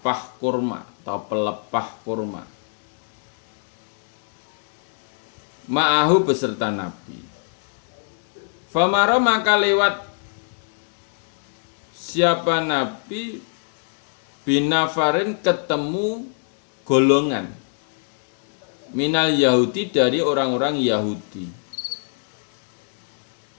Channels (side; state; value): right; silent; 63 dB below the other